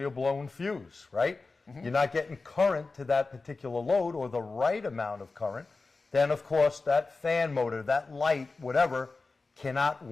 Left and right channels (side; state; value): right; quieter; 3.8 dB